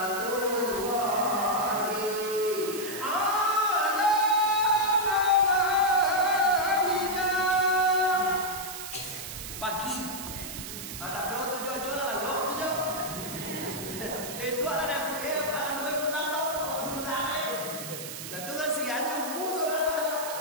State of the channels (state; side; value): noise; right; hiss, 9 dB below the sound